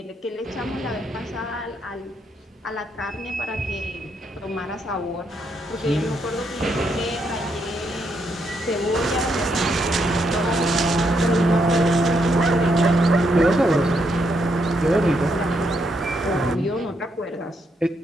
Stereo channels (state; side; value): normal; both; correlation 0.77